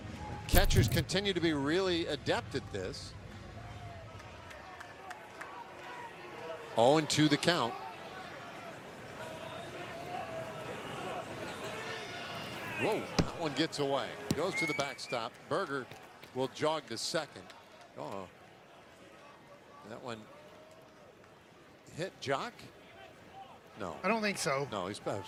catchers continue to be really adept at this. 0-2 the count. Whoa, that one gets away. Goes to the backstop. Berger will jog to second. Oh, that one hit Jock? No. I don't think so. No, he's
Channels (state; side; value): identical; both; correlation 1.00